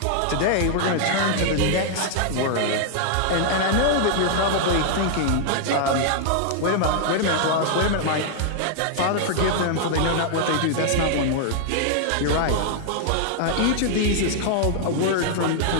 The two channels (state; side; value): different; both; correlation -0.01